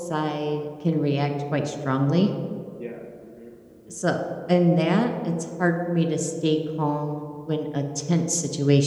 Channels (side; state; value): both; identical; correlation 1.00